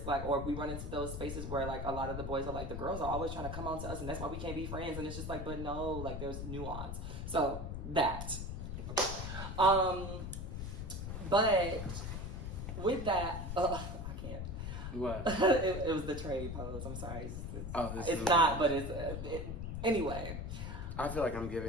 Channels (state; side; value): noise; left; rumble, 5 dB below the sound